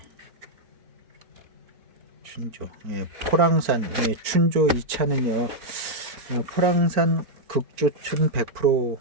춘조 포랑산 춘조 이 차는요 포랑산 극조춘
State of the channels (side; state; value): left; late; 4.4 ms